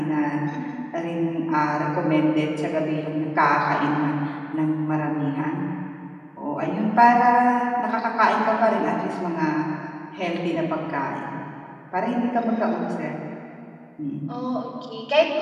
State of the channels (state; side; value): identical; both; correlation 1.00